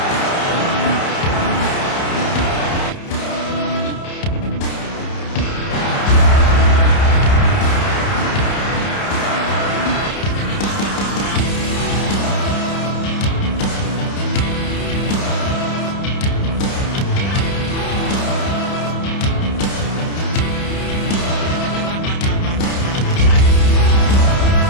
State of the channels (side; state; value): right; late; 30 ms